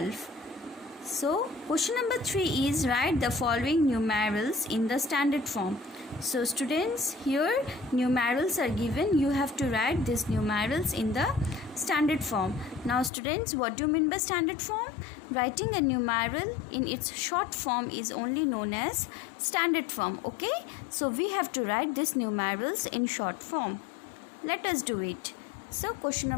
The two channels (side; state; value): right; drops out; at 13.1 s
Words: So question number 3 is write the following numerals in the standard form. So students, here numerals are given. You have to write these numerals in the standard form. Now students, what do you mean by standard form? Writing a numeral in its short form is only known as standard form. Okay, so we have to write these numerals in short form. Let us do it. So question